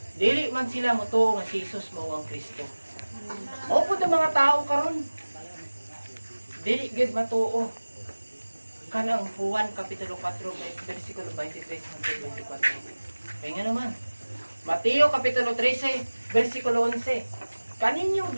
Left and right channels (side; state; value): both; inverted; correlation -1.00